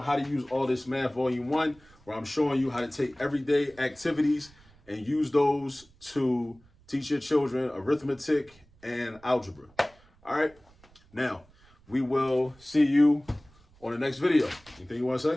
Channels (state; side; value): noise; right; rumble, 28 dB below the sound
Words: to Use All This Math, Volume 1, where I'm showing you how to take everyday activities and use those to teach your children arithmetic and algebra. All right. Now, we will see you on the next video. Anything you want to